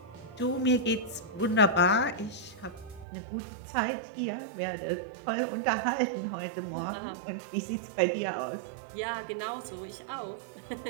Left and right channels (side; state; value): left; drops out; at 3.1 s